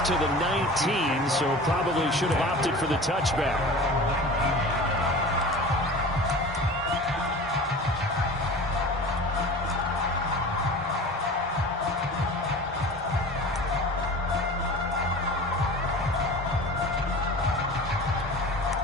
to the 19, so probably should have opted for the touchback.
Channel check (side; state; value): both; normal; correlation 0.37